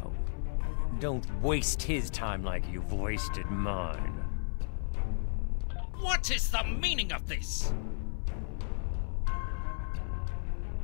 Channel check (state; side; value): silent; right; 55 dB below the other